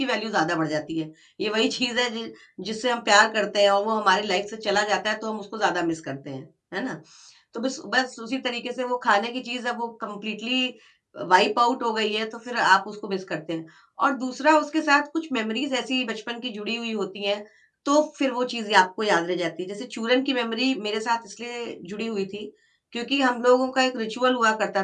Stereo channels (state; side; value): identical; both; correlation 1.00